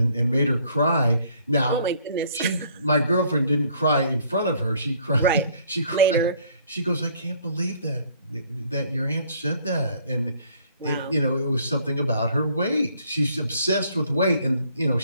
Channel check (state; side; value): inverted; both; correlation -0.61